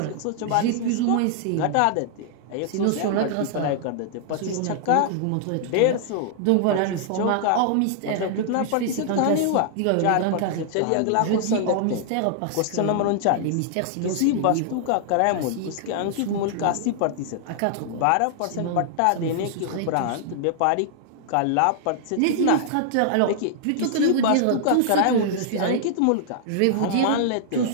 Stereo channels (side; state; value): both; different; correlation -0.01